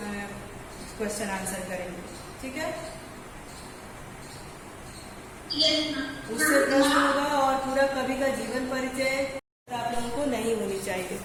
क्वेश्चन आंसर करेंगे, ठीक है। उससे प्रश्न होगा और पूरा कवि का जीवन परिचय आप लोगों को नहीं होनी चाहिए,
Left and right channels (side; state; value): both; identical; correlation 1.00